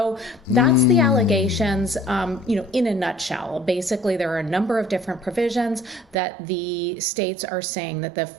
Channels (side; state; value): left; drops out; at 6.2 s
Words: that's the allegations, in a nutshell. Basically, there are a number of different provisions that the states are saying that the